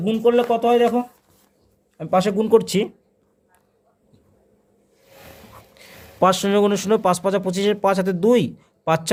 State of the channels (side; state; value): both; identical; correlation 1.00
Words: গুণ করলে কত হয় দেখো, আমি পাশে গুণ করছি। 5 0 × 0, 5 5 25, 5 হাতে 2, 5